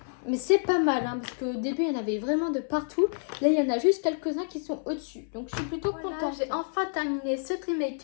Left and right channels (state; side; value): silent; right; digital silence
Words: mais c'est pas mal, hein, parce qu'au début, il y en avait vraiment de partout. Là, il y en a juste quelques-uns qui sont au-dessus. Donc, je suis plutôt contente. J'ai enfin terminé ce tri